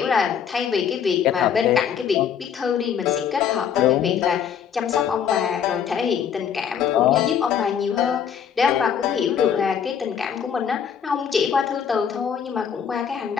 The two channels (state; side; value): quieter; right; 7.9 dB